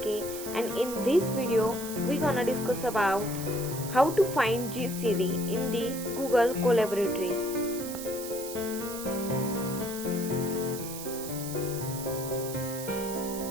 and in this video we're gonna discuss about how to find GCD in the Google Collaboratory.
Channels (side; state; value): right; noise; hiss, 10 dB below the sound